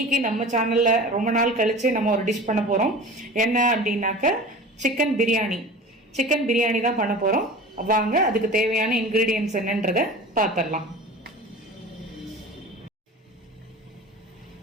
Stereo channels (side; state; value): both; normal; correlation 0.37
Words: நம்ம சேனலில் ரொம்ப நாள் கழித்து நம்ம ஒரு டிஷ் பண்ண போகிறோம். என்ன அப்படின்னாக்க சிக்கன் பிரியாணி தான் பண்ண போகிறோம். வாங்க அதுக்கு தேவையான இன்க்ரீடியன்ட்ஸ் என்னன்றதை பார்த்துடலாம்.